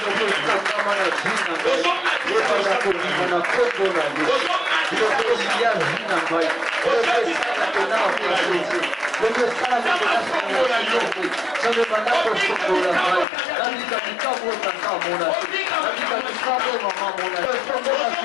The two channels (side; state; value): right; drops out; at 13.2 s